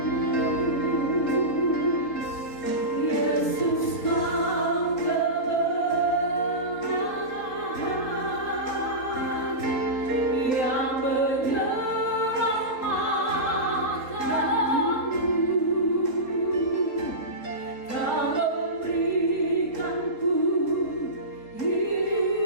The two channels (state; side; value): late; right; 3.8 ms